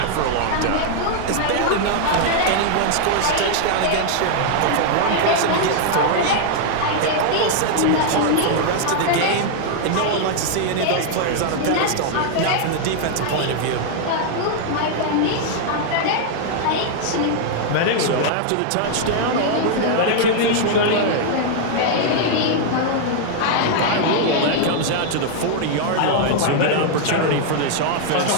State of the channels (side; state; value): both; different; correlation 0.00